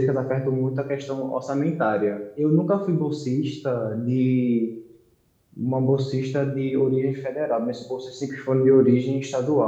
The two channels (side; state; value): both; identical; correlation 1.00